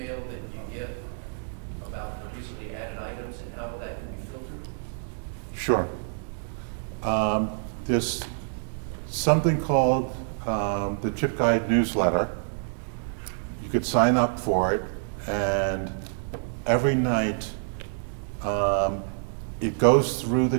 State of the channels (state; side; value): silent; left; digital silence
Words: that you get about the recently added items and how that can be filtered? Sure. There's something called the ChipGuide newsletter. You could sign up for it, and every night it goes through the